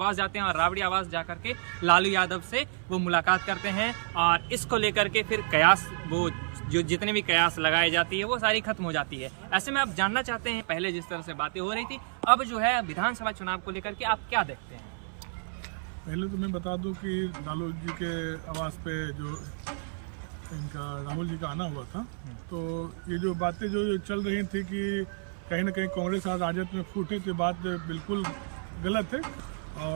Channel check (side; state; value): left; silent; 58 dB below the other